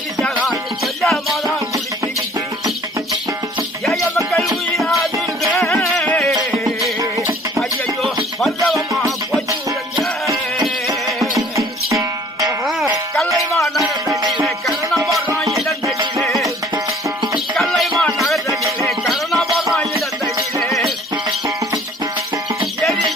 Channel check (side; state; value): both; normal; correlation 0.54